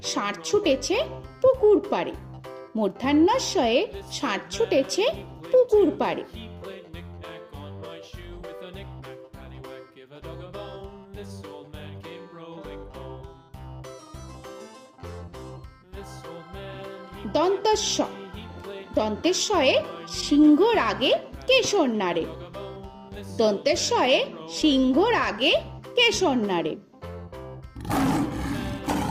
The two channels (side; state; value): both; identical; correlation 1.00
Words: ষাঁড় ছুটেছে পুকুর পাড়ে। মূর্ধন্যস্বয়ে ষাঁড় ছুটেছে পুকুর পাড়ে। দন্তস্ব দন্তেশ্বয়ে সিংহর আগে কেশর নাড়ে। দন্তেশ্বয়ে সিংহর আগে কেশর নাড়ে।